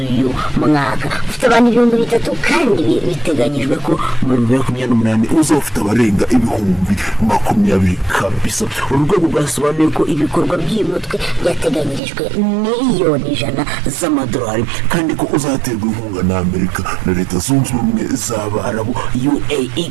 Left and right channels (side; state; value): left; drops out; at 12.0 s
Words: mwaka ufite abantu 300 kandi biteganyijwe ko mu 2028 uzafite abarenga ibihumbi 20 kabisa. Urwego rwasobanuye ko ibikorwa by'umutwe byateganyirijwe miliyoni 100 z'amadolari kandi ko uzaterwa inkunga na Amerika na leta zunze ubumwe z'Abarabu UAE